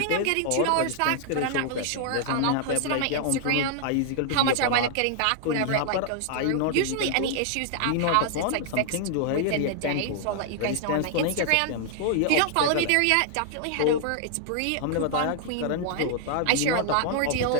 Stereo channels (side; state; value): both; different; correlation 0.00